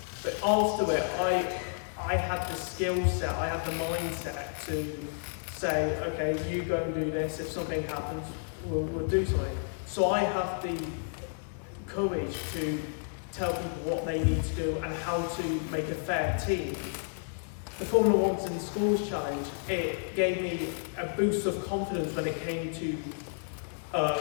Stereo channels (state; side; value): silent; right; digital silence